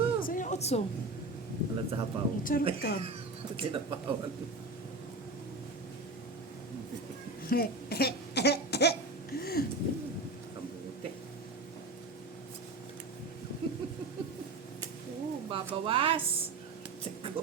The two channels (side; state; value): left; quieter; 3.1 dB